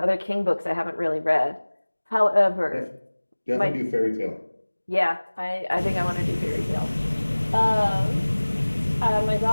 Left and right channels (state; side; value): inverted; both; correlation -1.00